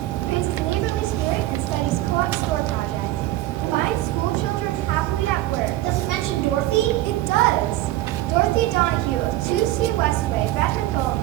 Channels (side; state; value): left; quieter; 15.7 dB